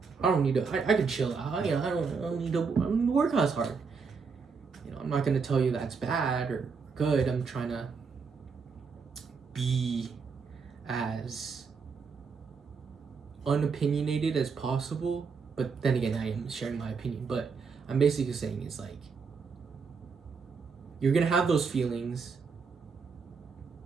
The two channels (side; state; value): left; quieter; 5.3 dB